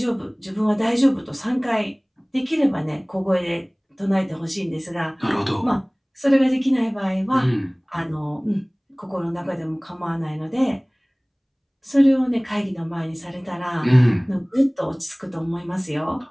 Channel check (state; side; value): identical; both; correlation 1.00